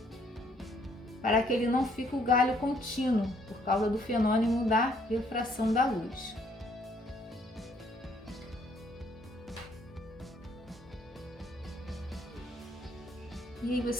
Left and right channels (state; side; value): normal; both; correlation 0.66